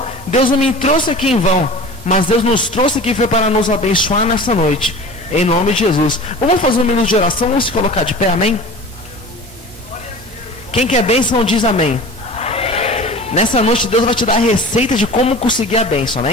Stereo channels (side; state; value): both; normal; correlation 0.38